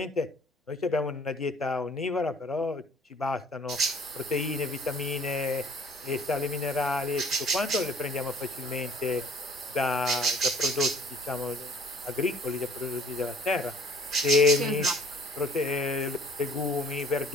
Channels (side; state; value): both; normal; correlation 0.55